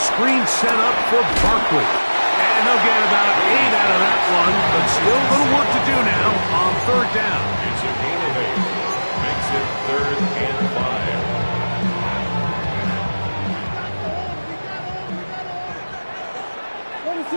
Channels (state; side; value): inverted; both; correlation -1.00